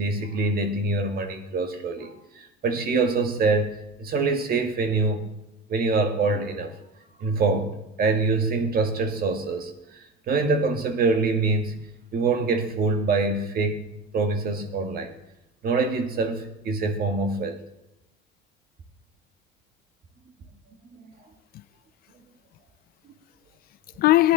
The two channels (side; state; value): both; normal; correlation 0.27